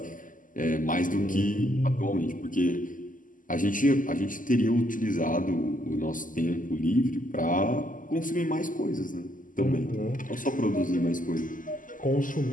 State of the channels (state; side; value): late; right; 0.38 ms